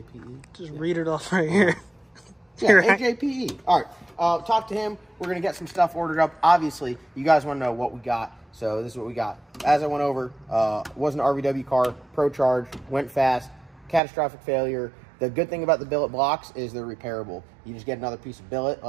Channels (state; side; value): drops out; left; at 14.0 s